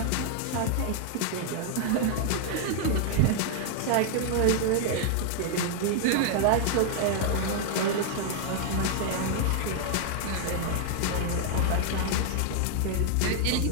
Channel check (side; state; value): both; different; correlation 0.00